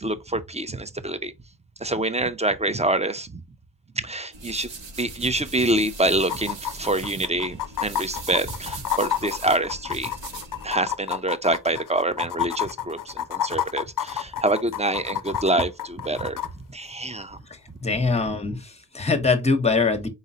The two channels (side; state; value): both; normal; correlation 0.29